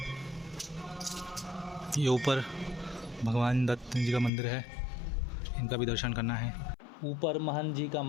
ये ऊपर भगवान दत्त जी का मंदिर है, इनका भी दर्शन करना है। ऊपर महंत जी का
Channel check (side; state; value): right; drops out; at 4.3 s